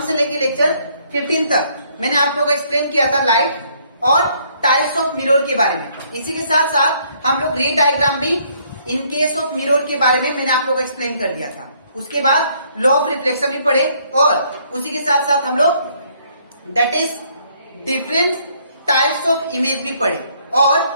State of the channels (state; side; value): inverted; both; correlation -0.66